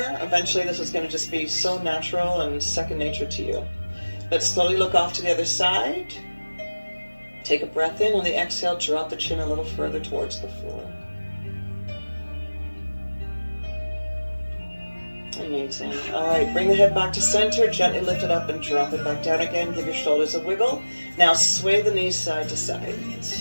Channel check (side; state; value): both; inverted; correlation -1.00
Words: Eventually, this is going to just be so natural and second nature to you. Let's slowly look off to the other side. Take a breath in. On the exhale, drop the chin a little further towards the floor. Amazing. All right, bring the head back to center, gently lift it up and drop it back down again. Give your shoulders a wiggle. Now sway the knees side to side.